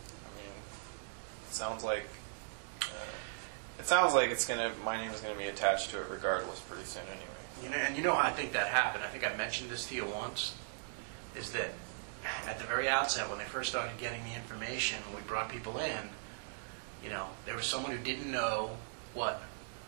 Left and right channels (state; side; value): silent; left; digital silence